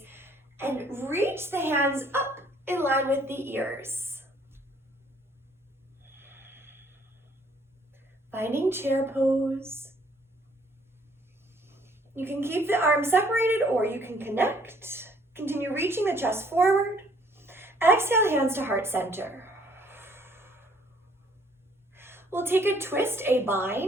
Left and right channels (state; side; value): normal; both; correlation 0.62